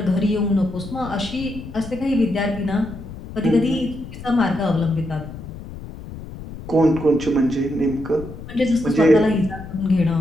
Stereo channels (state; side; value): noise; left; rumble, 12 dB below the sound